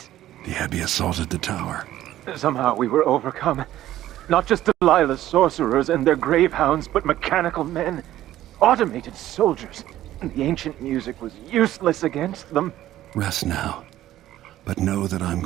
The Abbey assaulted the tower. Somehow we were overcome. Not just Delilah's sorcerers and their gravehounds, but mechanical men. Automated soldiers. The ancient music was useless against them. Rest now. But know that I'm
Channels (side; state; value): left; quieter; 13.6 dB